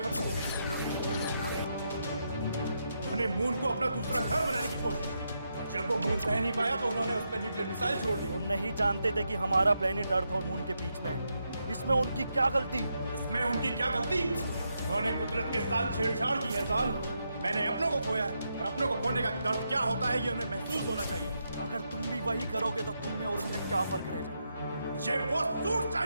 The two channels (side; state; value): both; inverted; correlation -0.82